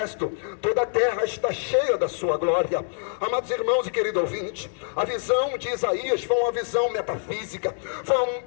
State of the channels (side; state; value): right; silent; digital silence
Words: toda a terra está cheia da sua glória. Amados irmãos e querido ouvinte, a visão de Isaías foi uma visão metafísica, foi